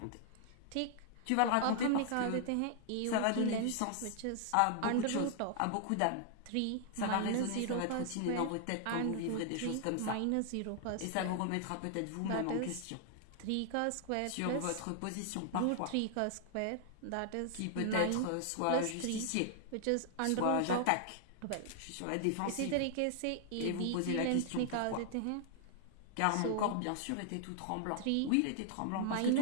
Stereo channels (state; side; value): different; both; correlation -0.01